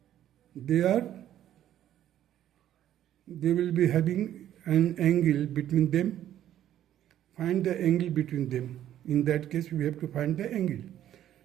they will be having an angle between them. Find the angle between them. In that case we have to find the angle.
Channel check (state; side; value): quieter; left; 11.6 dB